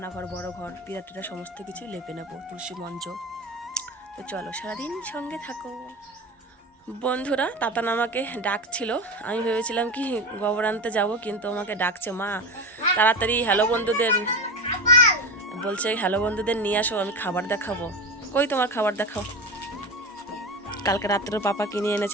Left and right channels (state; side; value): normal; both; correlation 0.23